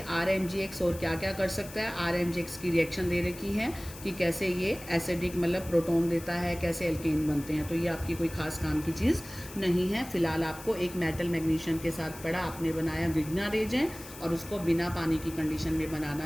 RMgX और क्या क्या कर सकता है। RMgX की रिएक्शन दे रखी है कि कैसे ये एसिडिक मतलब प्रोटॉन देता है, कैसे एल्केन बनते हैं। तो ये आपकी कोई खास काम की चीज़ नहीं है। फिलहाल आपको एक मेटल मैग्नीशियम के साथ पढ़ा, आपने बनाया ग्रिग्नार्ड रिएजेंट और उसको बिना पानी की कंडीशन में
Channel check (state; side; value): noise; left; hiss, 16 dB below the sound